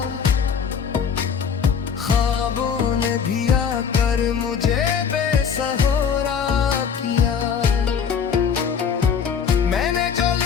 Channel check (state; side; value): quieter; right; 7.0 dB